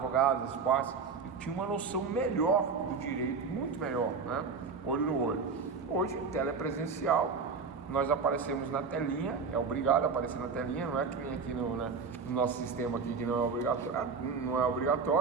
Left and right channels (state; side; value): quieter; left; 5.2 dB